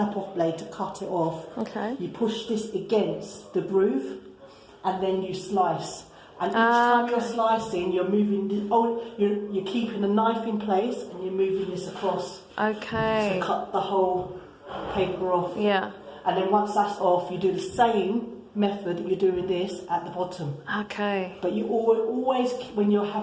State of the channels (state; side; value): identical; both; correlation 1.00